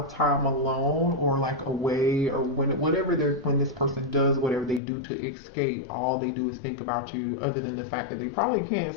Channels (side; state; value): right; drops out; at 4.8 s